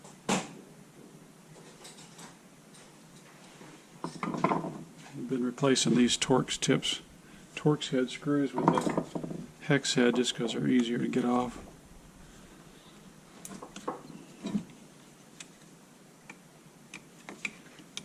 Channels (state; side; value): identical; both; correlation 1.00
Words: I've been replacing these Torx head screws with the hex head just because they're easier to get off.